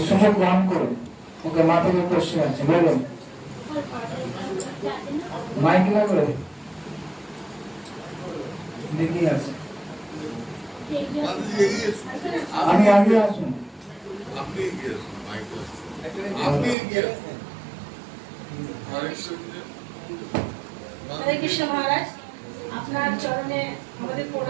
সুযোগ গ্রহণ করুন। ওকে, মাথায় কোশ্চেন আছে বলুন, মাইক লাগবে দেখি আছে। আমি আগে আসুন। হরে কৃষ্ণ মহারাজ, আপনার চরণে আমাদের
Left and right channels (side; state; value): left; drops out; at 16.8 s